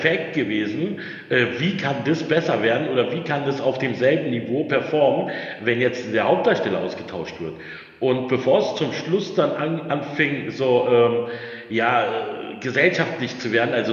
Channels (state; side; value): identical; both; correlation 1.00